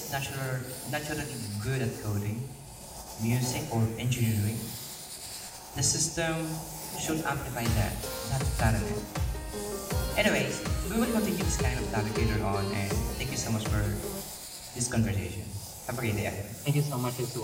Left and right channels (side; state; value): both; identical; correlation 1.00